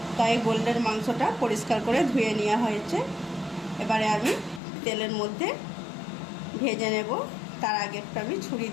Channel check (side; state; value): right; drops out; at 4.6 s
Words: তাই গোল্ডেন মাংসটা পরিষ্কার করে ধুয়ে নেওয়া হয়েছে। এবারে আমি তেলের মধ্যে ভেজে নেব। তার আগে একটু আমি ছুরি